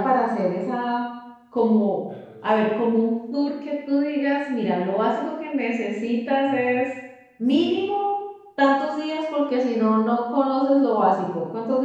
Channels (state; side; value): identical; both; correlation 1.00